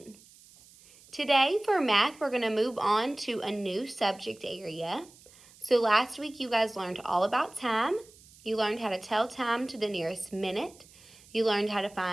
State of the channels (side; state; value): right; noise; hiss, 24 dB below the sound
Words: Today for math, we're going to move on to a new subject area. So last week you guys learned all about time. You learned how to tell time to the nearest minute. You learned how to